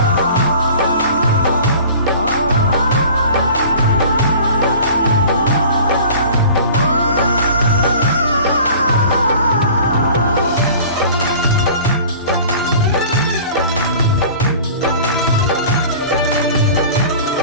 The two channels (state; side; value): inverted; both; correlation -0.43